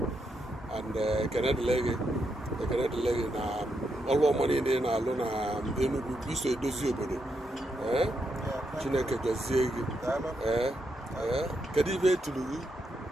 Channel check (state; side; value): normal; both; correlation 0.81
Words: and ekenedịle gị na ọrụ ọma niile na-alụ na Enugwu iso edozi obodo. Chineke gọzie gị. Kedu ibe etulu gị?